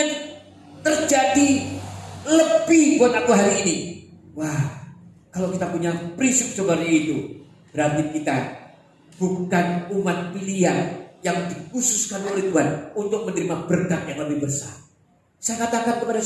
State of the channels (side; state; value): both; identical; correlation 1.00